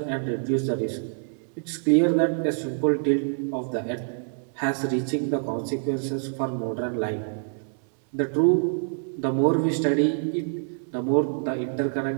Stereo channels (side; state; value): left; silent; digital silence